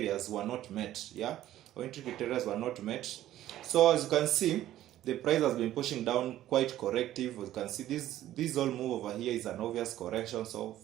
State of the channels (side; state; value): left; quieter; 13.3 dB